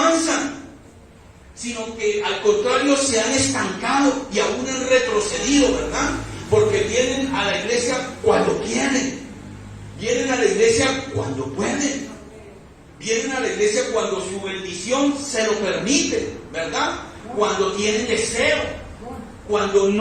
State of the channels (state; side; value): identical; both; correlation 1.00